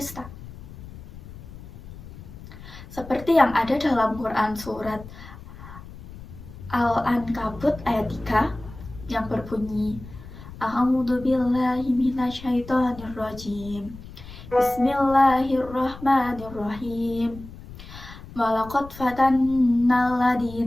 Seperti yang ada dalam Quran surat Al-Ankabut ayat 3 yang berbunyi, A'udzu billahi minasyaitonir rajim. Bismillahirrahmanirrahim. Walaqad fatannal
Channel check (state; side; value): noise; left; rumble, 16 dB below the sound